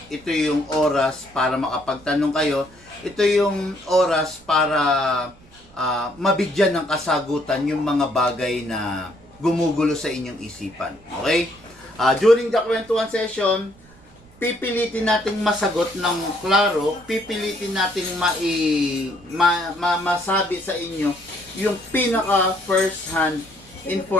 Ito yung oras para makapagtanong kayo. Ito yung oras para mabigyan ng kasagutan yung mga bagay na gumugulo sa inyong isipan. Okay? During the kwentuhan session, pipilitin nating masagot ng klaro, pipilitin nating masabi sa inyo yung pinaka first hand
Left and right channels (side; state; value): right; noise; rumble, 26 dB below the sound